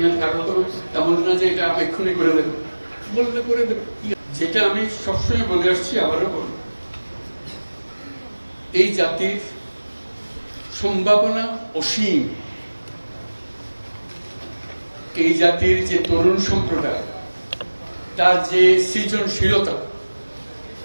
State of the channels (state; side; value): inverted; both; correlation -1.00